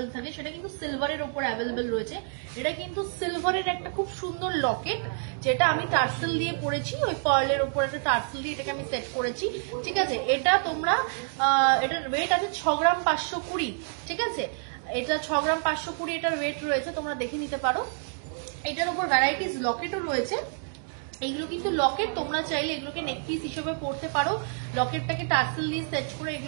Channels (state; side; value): silent; left; 59 dB below the other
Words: থাকে, সেটা কিন্তু সিলভারের উপর অ্যাভেলেবল রয়েছে। এটা কিন্তু সিলভারের একটা খুব সুন্দর লকেট, যেটা আমি টার্সেল দিয়ে পড়েছি, ওই পার্লের উপর একটা টার্সেল দিয়ে এটাকে আমি সেট করেছি। ঠিক আছে, এটা তোমরা এটার ওয়েট আছে 6 গ্রাম 520। ঠিক আছে, এটা 6 গ্রাম 520 এটার ওয়েট রয়েছে, তোমরা দেখে নিতে পারো। এটার উপর ভ্যারাইটিস লকেটও রয়েছে। এইগুলো কিন্তু লকেট, তোমরা চাইলে এগুলোকে নেকপিস হিসেবে পড়তে পারো। লকেটটাকে টার্সেল দিয়ে সেট করে